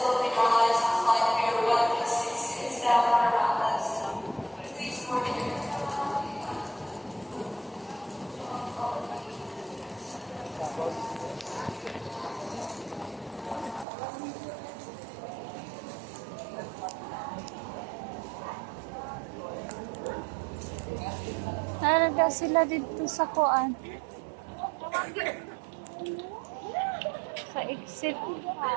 Philippine Airlines flight Pier 166 down around us. Please board your Naraga sila dito sa kuan. Sa exit.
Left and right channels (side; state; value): left; drops out; at 13.9 s